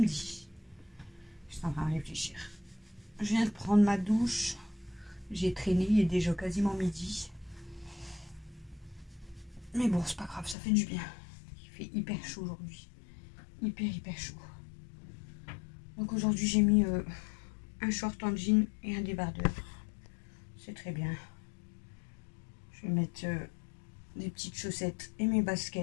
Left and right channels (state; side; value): drops out; right; at 10.6 s